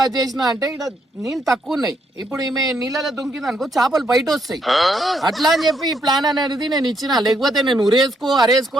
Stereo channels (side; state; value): both; normal; correlation 0.74